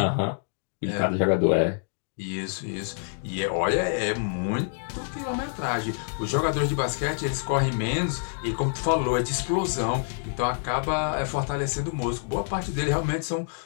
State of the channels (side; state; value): right; silent; digital silence